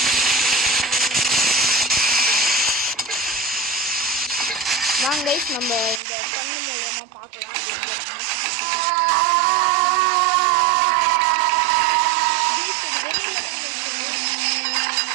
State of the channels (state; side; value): drops out; left; at 6.0 s